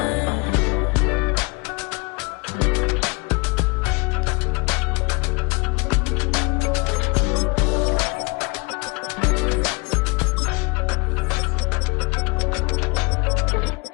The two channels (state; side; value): quieter; right; 28.7 dB